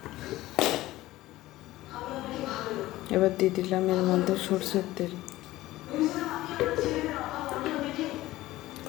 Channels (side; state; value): right; quieter; 16.8 dB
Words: এবার দিয়ে দিলাম এর মধ্যে সরষের তেল,